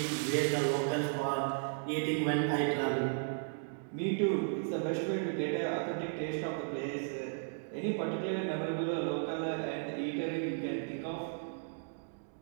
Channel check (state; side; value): silent; left; digital silence